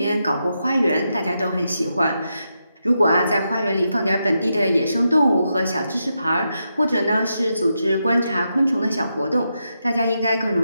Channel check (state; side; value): inverted; both; correlation -0.85